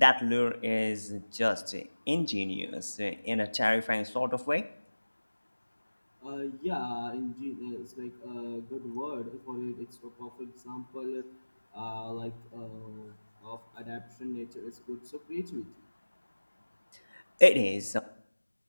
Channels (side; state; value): both; inverted; correlation -1.00